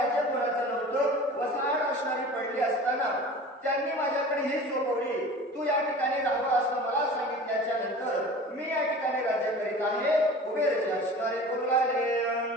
कोणाचं नव्हतं, वसाहत असणारी पडली असताना त्यांनी माझ्याकडे ही सोपवली. तू या ठिकाणी राहावं असं मला सांगितल्याच्या नंतर मी या ठिकाणी राज्य करीत आहे. कुबेरजी असणारे बोलले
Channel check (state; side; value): normal; both; correlation 0.39